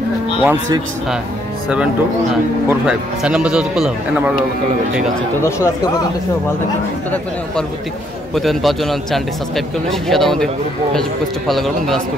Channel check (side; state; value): both; normal; correlation 0.70